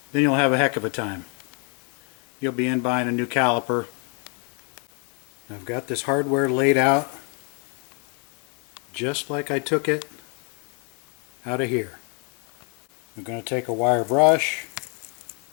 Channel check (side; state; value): right; quieter; 36.8 dB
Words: then you'll have a heck of a time. You'll be in buying a new caliper. I've got this hardware laid out just like I took it out of here. I'm going to take a wire brush,